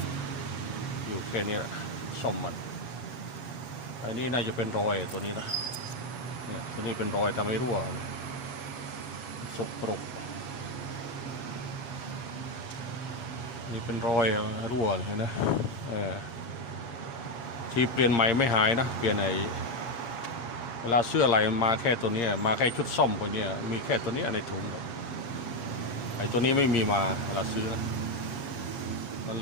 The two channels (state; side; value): late; right; 7.2 ms